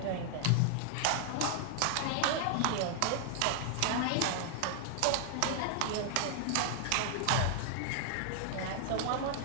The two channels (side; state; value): both; different; correlation 0.00